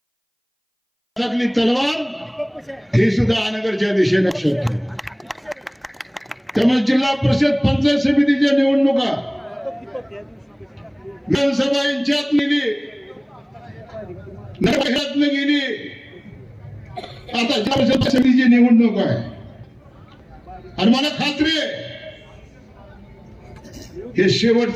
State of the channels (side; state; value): both; identical; correlation 1.00